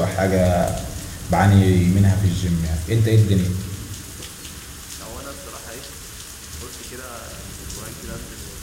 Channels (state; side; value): identical; both; correlation 1.00